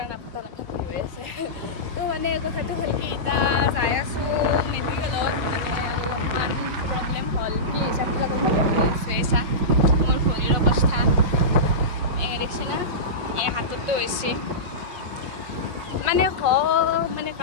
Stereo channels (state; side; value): late; left; 5.5 ms